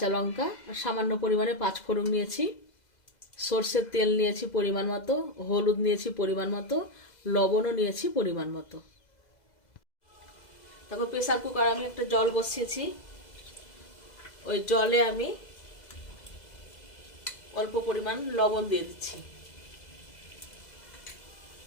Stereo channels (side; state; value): right; late; 2.0 ms